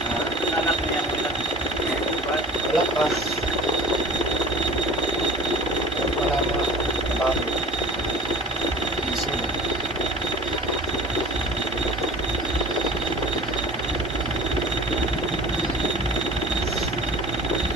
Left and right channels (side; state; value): both; normal; correlation 0.40